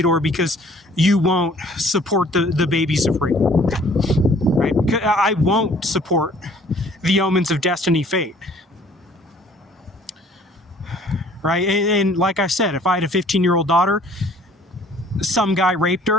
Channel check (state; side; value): normal; both; correlation 0.56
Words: because you won't support the babies of rape, right? I won't support the omens of destiny fate, right? And like I said, if I had a 15-year-old daughter, some guy raped